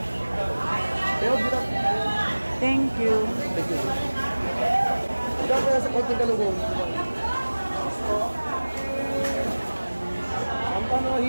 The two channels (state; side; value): inverted; both; correlation -1.00